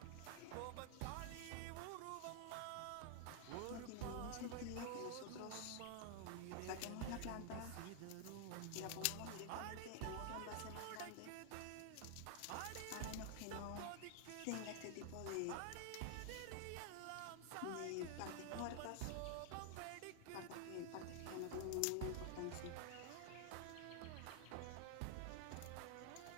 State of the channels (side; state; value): both; different; correlation 0.00